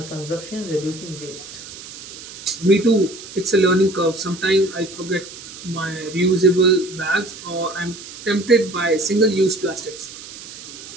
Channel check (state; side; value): noise; right; hiss, 14 dB below the sound